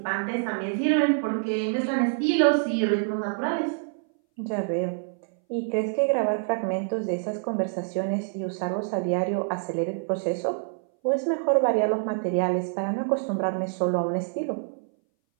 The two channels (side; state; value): left; silent; 59 dB below the other